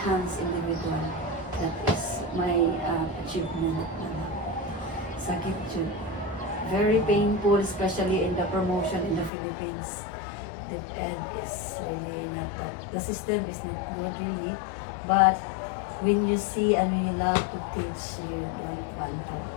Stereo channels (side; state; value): right; drops out; at 9.3 s